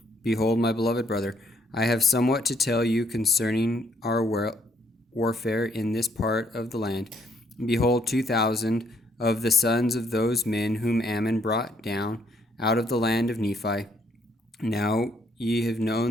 Behold, my beloved brother, I have somewhat to tell you concerning our warfare in this part of the land. Behold, 2,000 of the sons of those men whom Ammon brought down out of the land of Nephi. Now ye have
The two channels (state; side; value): normal; both; correlation 0.69